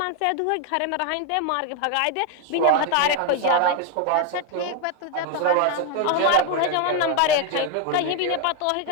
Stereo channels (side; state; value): both; different; correlation 0.01